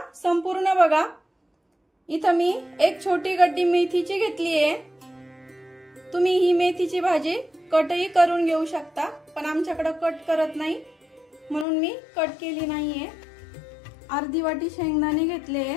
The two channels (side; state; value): right; drops out; at 11.7 s